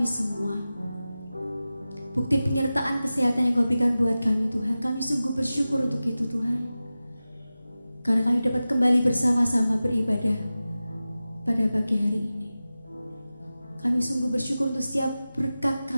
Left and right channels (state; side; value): inverted; both; correlation -0.95